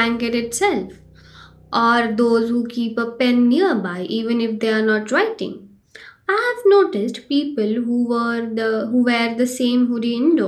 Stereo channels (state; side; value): identical; both; correlation 1.00